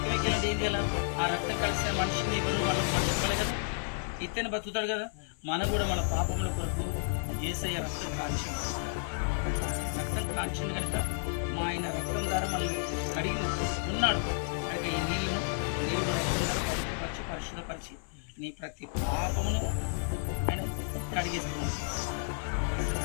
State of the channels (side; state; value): right; silent; 57 dB below the other